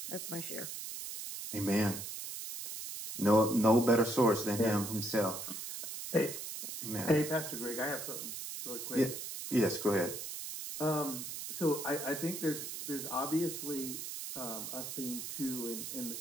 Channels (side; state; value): right; noise; hiss, 7 dB below the sound